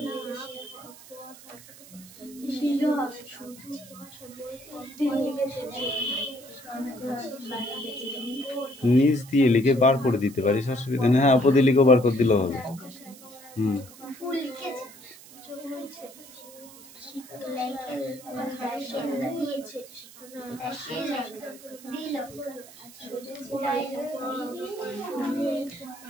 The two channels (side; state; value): right; noise; hiss, 19 dB below the sound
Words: হবে নিচ দিয়ে লিখে বার করে দিতে পারিস, অসুবিধা নেই। হ্যাঁ, উপর দিয়ে লিখে বার করে দিলেও হবে।